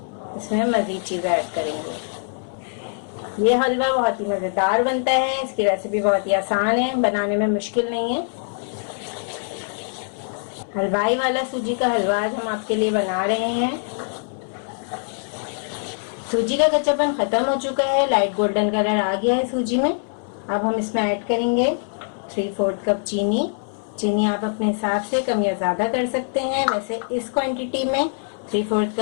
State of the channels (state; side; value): silent; right; 62 dB below the other